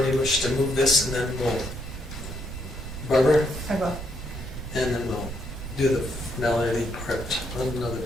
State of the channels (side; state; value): right; noise; rumble, 10 dB below the sound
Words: wish to move this, and then we'll, Barbara, I will. and then we'll do the finality part another